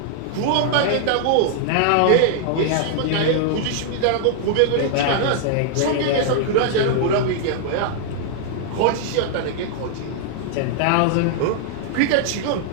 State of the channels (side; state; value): both; different; correlation 0.00